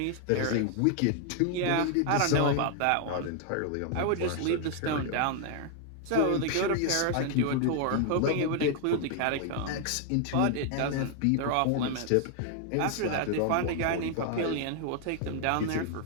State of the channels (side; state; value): both; different; correlation 0.00